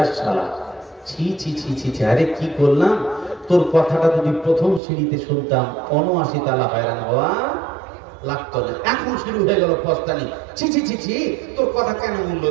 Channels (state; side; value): drops out; left; at 4.8 s